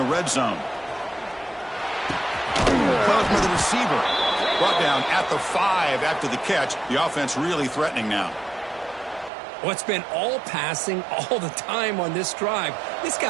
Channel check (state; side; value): drops out; left; at 9.3 s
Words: red zone. Caught by the receiver. Brought down at the 5 after the catch. The offense really threatening now. Well, it's been all passing all the time on this drive. This